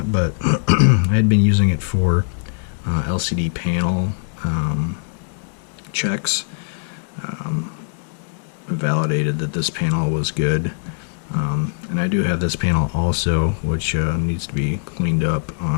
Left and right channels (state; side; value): silent; right; digital silence